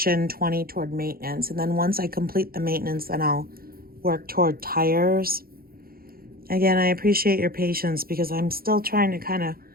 20 toward maintenance. And then once I complete the maintenance, then I'll work toward tires. Again, I appreciate your patience because I'm still trying to kind of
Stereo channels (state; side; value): late; left; 0.43 ms